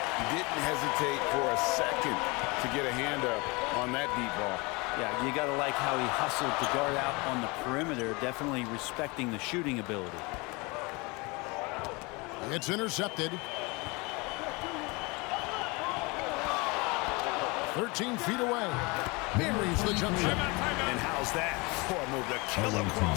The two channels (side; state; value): right; quieter; 26.7 dB